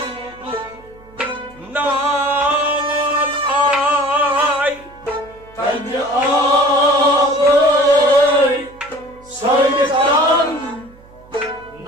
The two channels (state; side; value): noise; right; hum, 25 dB below the sound